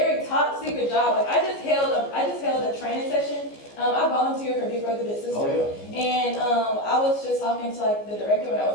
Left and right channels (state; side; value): late; right; 14 ms